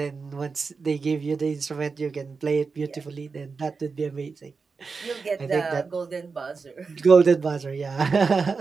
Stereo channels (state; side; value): quieter; left; 4.8 dB